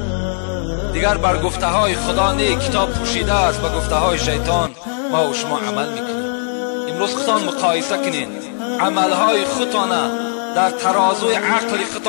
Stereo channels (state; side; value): silent; right; digital silence